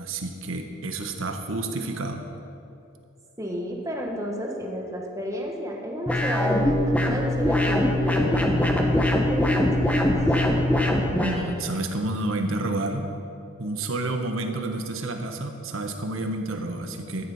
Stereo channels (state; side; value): normal; both; correlation 0.71